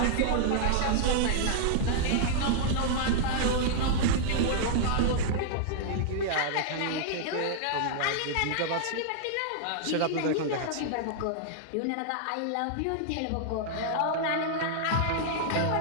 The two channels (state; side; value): different; both; correlation -0.01